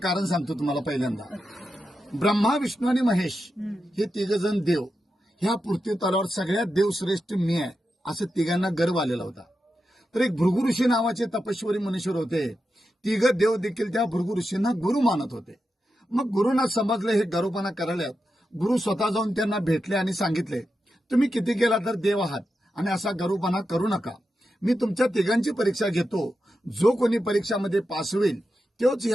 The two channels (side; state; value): both; normal; correlation 0.89